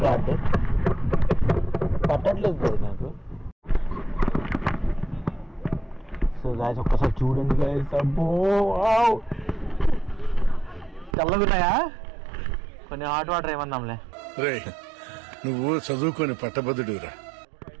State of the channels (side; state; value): left; drops out; at 11.2 s